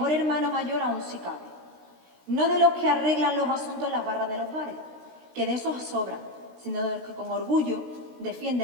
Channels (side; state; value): left; late; 16 ms